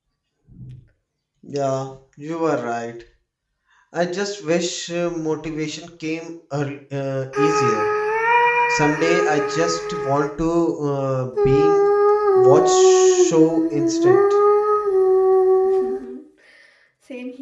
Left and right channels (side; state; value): both; identical; correlation 1.00